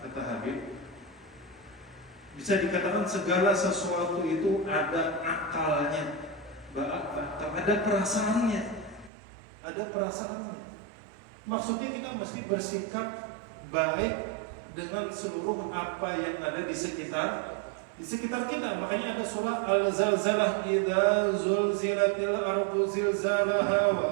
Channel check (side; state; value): left; drops out; at 9.1 s